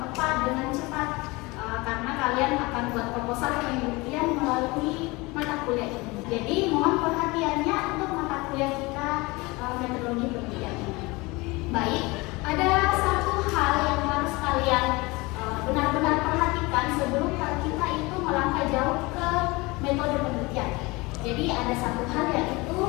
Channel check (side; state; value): right; quieter; 23.8 dB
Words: tepat, dengan cepat, karena kalian akan buat proposal penelitian melalui mata kuliah ini. Jadi mohon perhatiannya untuk mata kuliah kita metodologi penelitian ini. Baik, ada satu hal yang harus kalian benar-benar perhatikan sebelum kita itu melangkah jauh ke metode penelitian. Jadi ada satu hal yaitu